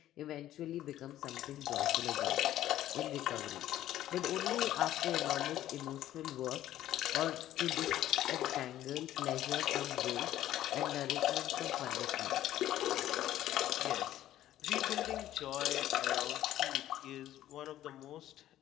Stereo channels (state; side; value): quieter; right; 13.1 dB